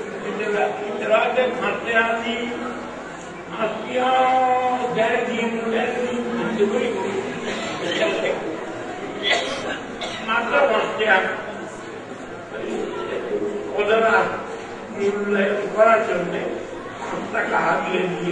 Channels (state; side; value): identical; both; correlation 1.00